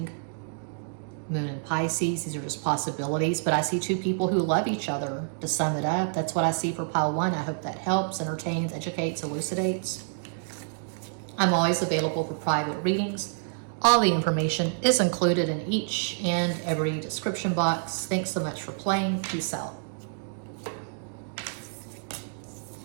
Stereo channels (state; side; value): silent; left; digital silence